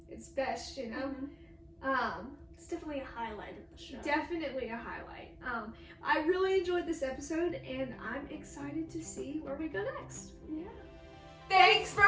its best, you know? It's definitely a highlight of the show. Definitely a highlight. I really enjoyed this episode, and I'm excited to see where we go next. Yeah. Thanks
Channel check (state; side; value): identical; both; correlation 1.00